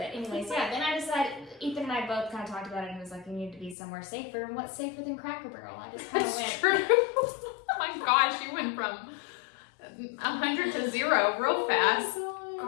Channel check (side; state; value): right; drops out; at 3.8 s